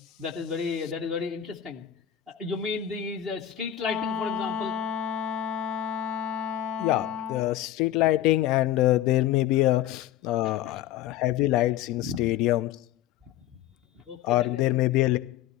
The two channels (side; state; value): right; quieter; 11.9 dB